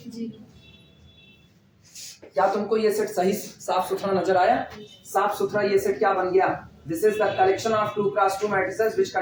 क्या तुमको ये सेट सही साफ सुथरा नजर आया? साफ सुथरा ये सेट क्या बन गया? This is the collection of 2 cross 2 matrices which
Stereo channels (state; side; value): identical; both; correlation 1.00